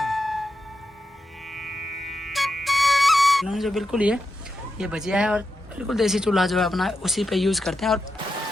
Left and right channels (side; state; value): both; normal; correlation 0.88